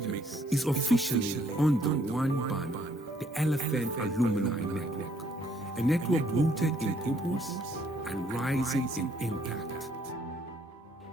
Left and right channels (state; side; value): normal; both; correlation 0.66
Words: is officially under one banner, the LFN Alumni Network, a network rooted in purpose and rising in impact.